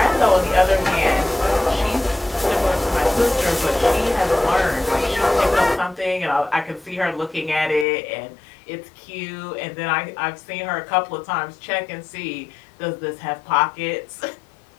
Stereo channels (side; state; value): right; drops out; at 7.9 s